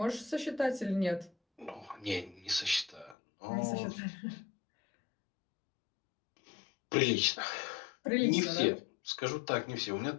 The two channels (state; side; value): drops out; right; at 3.2 s